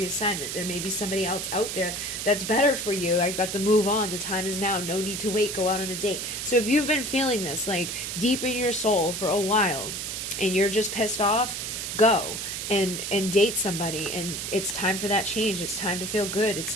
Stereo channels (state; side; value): noise; right; hiss, 4 dB below the sound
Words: There may be somebody else out there that's better for you. I got to move on. The time is now. No need to wait. Go out on a date. So if you've been feeling this like deep in your soul for a while and you're just pissed off, go and date somebody, and it's time for that change. It's time to feel good. It's